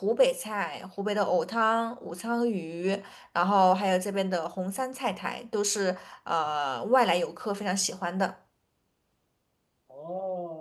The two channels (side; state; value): both; identical; correlation 1.00